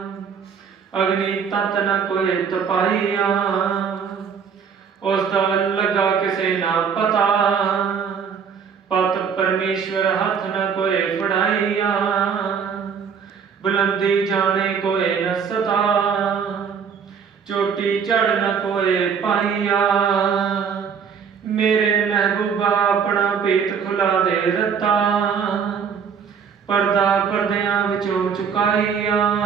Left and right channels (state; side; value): quieter; left; 6.7 dB